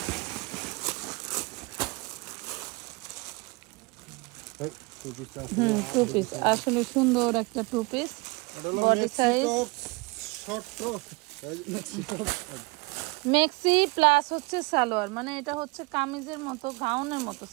2 পিস আসলে সুন্দর একটা 2 পিস বডি সাইজ শর্ট মেক্সি প্লাস হচ্ছে সালোয়ার, মানে এটা হচ্ছে কামিজের মতো গাউনের মতো,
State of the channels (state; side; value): quieter; left; 26.6 dB